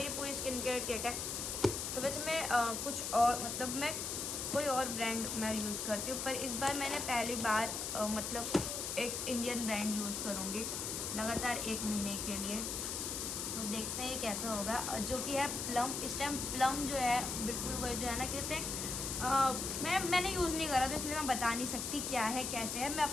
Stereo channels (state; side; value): noise; left; hiss, 3 dB below the sound